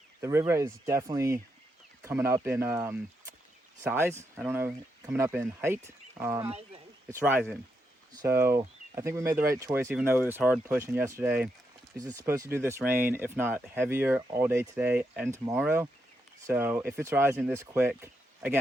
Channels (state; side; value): normal; both; correlation 0.82